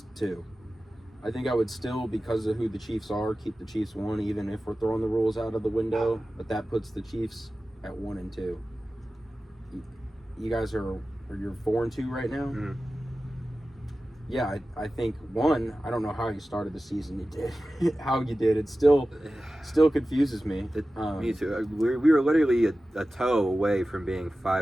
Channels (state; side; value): normal; both; correlation 0.95